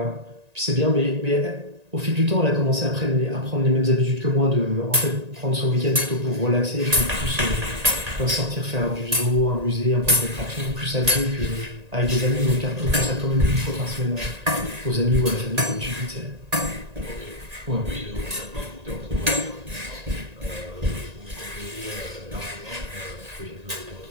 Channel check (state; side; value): late; left; 1.9 ms